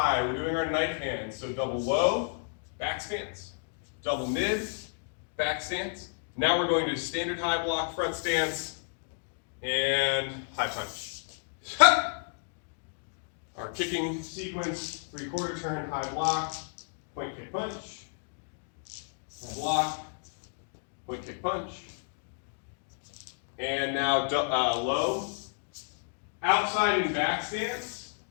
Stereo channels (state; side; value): silent; right; digital silence